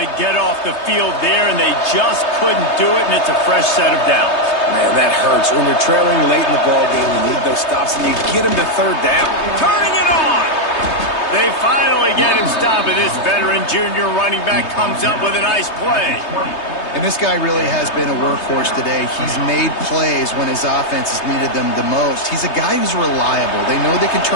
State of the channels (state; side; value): late; right; 3.3 ms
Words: get off the field there, and they just couldn't do it, and it's a fresh set of downs. Man, that hurts. When you're trailing late in the ball game, you need those stops, and you get them to third down. Turning it on! They finally get him stopped, and this veteran junior running back comes up with a nice play. And this guy really has been a workhorse today. He's made plays when his offense has needed them the most. He's a guy who's reliable. They know they can